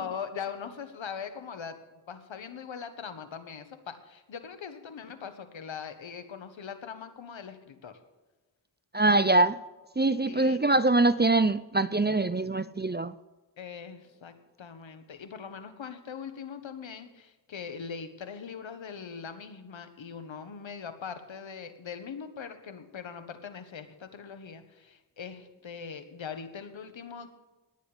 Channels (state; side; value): normal; both; correlation 0.07